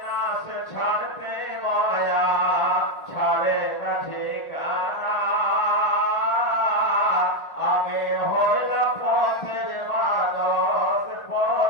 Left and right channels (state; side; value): late; right; 1.4 ms